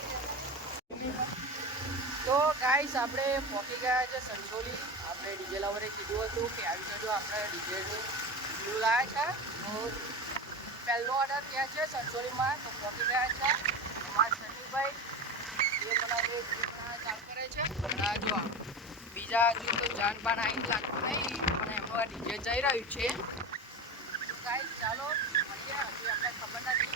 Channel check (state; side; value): normal; both; correlation 0.24